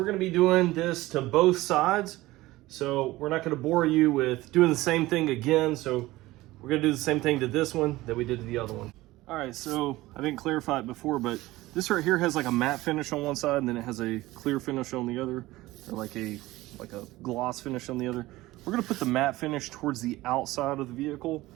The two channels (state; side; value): quieter; left; 18.3 dB